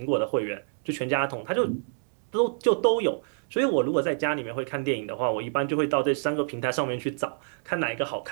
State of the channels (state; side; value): silent; left; 60 dB below the other